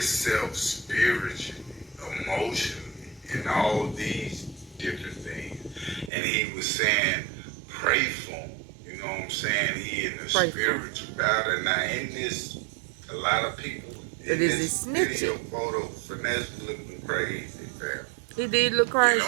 spiritually, emotionally, and all these different things. And he was saying, pray for him. You know what I'm saying? He in the spiritual battle. Now in this, a lot of people in this video photo, Finesse looking crazy, fam. He did look crazy.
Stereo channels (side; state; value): left; drops out; at 6.1 s